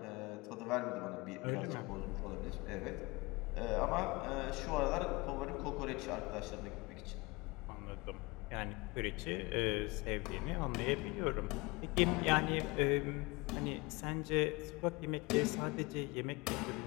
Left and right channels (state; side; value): quieter; right; 24.6 dB